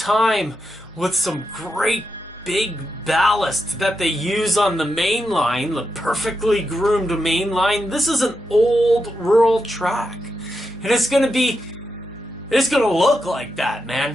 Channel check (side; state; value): both; normal; correlation 0.86